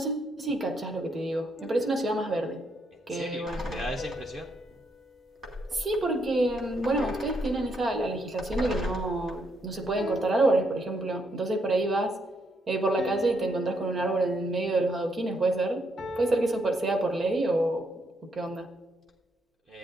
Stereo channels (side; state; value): both; normal; correlation 0.76